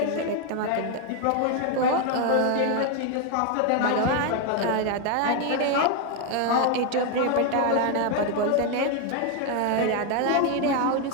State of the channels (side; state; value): both; different; correlation 0.01